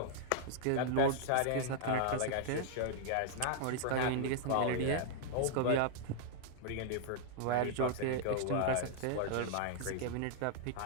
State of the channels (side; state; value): both; different; correlation -0.01